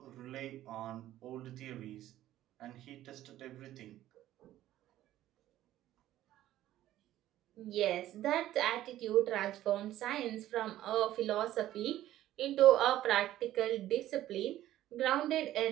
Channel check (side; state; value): left; quieter; 13.7 dB